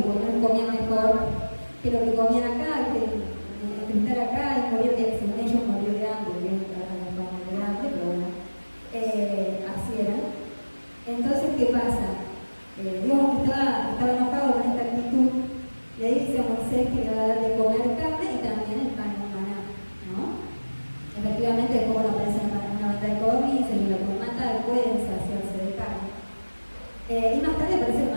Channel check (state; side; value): inverted; both; correlation -1.00